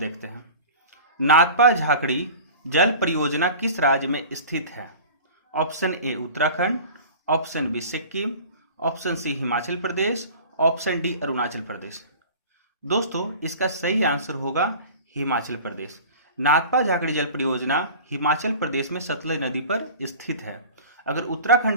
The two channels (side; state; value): both; inverted; correlation -0.39